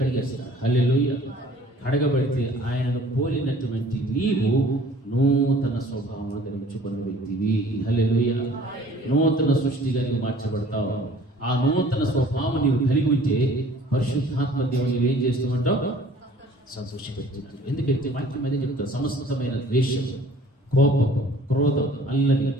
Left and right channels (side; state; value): both; normal; correlation 0.51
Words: హల్లెలూయా. కడగబడితే ఆయనను పోలినటువంటి నీవు నూతన స్వభావం ధరించుకున్న వ్యక్తివి. హల్లెలూయా. నూతన సృష్టిగా నీవు మార్చబడతావు. ఆ నూతన స్వభావం నీవు కలిగి ఉంటే పరిశుద్ధాత్మ దేవుని ఏం చేస్తూ ఉంటావు? సంతోషపెడుతున్నాడు. ఎందుకంటే వాక్యం అదే చెప్తారు, సమస్తమైన ద్వేషం, కోపం, క్రోధం, అల్లరి,